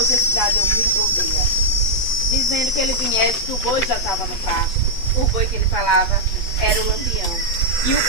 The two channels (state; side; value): late; right; 8.6 ms